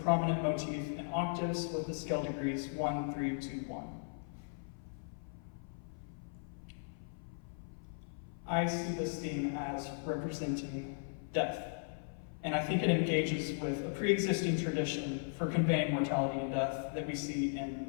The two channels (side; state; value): right; silent; 53 dB below the other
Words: motif in octaves with the scale degrees 1, 3, 2, 1. I see this theme as representing death, and I think it engages with a pre-existing tradition for conveying mortality and death that we see in